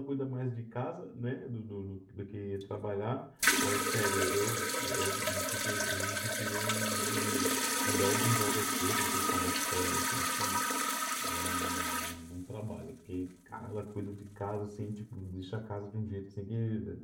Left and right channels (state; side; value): identical; both; correlation 1.00